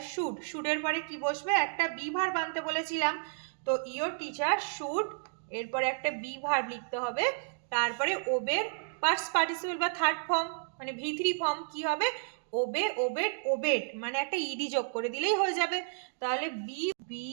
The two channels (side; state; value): left; silent; digital silence